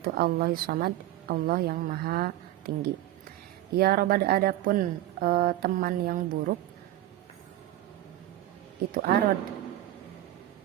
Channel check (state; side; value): quieter; left; 14.3 dB